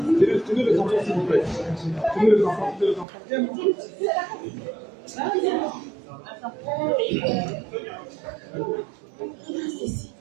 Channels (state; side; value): drops out; left; at 3.1 s